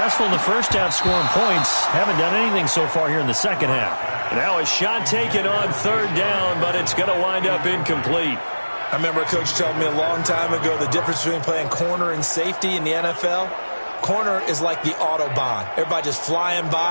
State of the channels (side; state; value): both; inverted; correlation -1.00